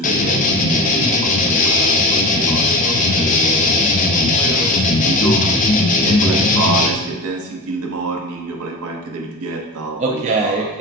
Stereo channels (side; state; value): both; normal; correlation 0.29